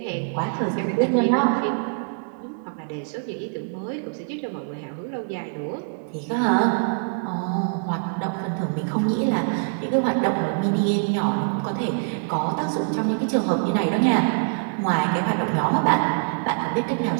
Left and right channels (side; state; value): left; silent; digital silence